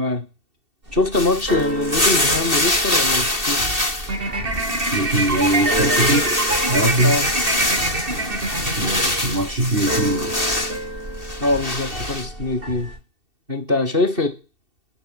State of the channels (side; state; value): left; late; 2.7 ms